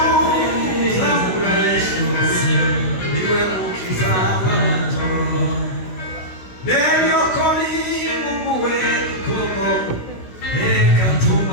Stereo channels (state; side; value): late; right; 16 ms